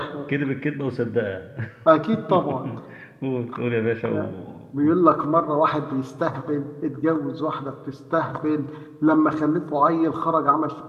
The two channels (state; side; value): identical; both; correlation 1.00